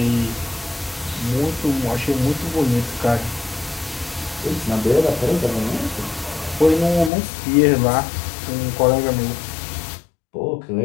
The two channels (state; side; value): drops out; right; at 7.1 s